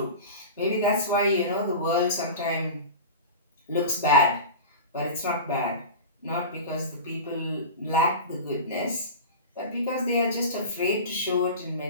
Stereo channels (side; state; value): both; inverted; correlation -0.30